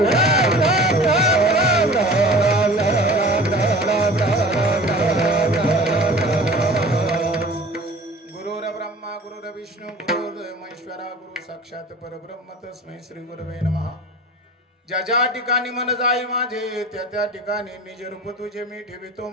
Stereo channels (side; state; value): both; normal; correlation 0.41